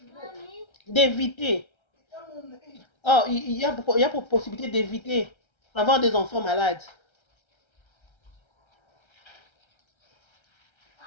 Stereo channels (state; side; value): late; right; 1.3 ms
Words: d'éviter. Or, il y a possibilité d'éviter d'avoir des enfants malades.